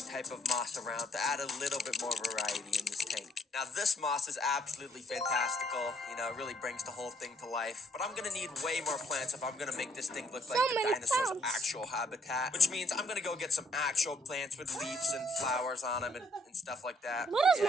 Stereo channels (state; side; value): normal; both; correlation 0.67